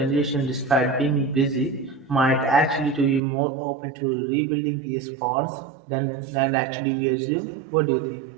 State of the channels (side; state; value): left; drops out; at 3.2 s